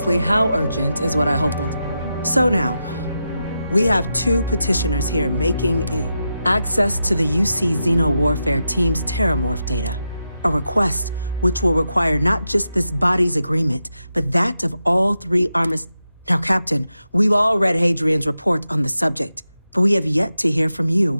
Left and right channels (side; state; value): both; inverted; correlation -0.88